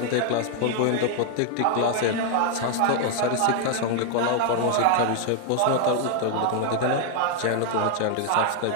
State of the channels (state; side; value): different; both; correlation 0.00